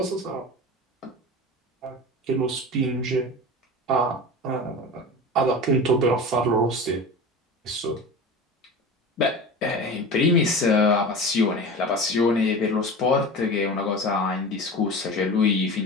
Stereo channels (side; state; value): both; normal; correlation 0.31